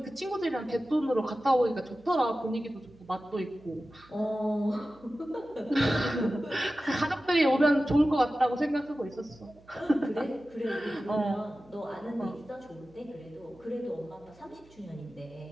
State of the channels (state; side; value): noise; right; hum, 27 dB below the sound